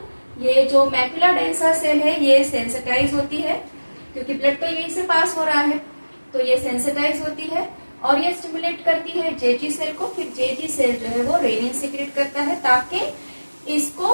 ये जो मैक्यूला डेंसा सेल है ये सेंसिटाइज होती है, क्योंकि ब्लड तो यहीं से पास हो रहा है, तो ये सेंसिटाइज होती है और ये स्टिमुलेट करती है जेजी सेल को. फिर जेजी सेल जो है वो रेनिन सीक्रेट करता है ताकि इसको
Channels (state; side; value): inverted; both; correlation -1.00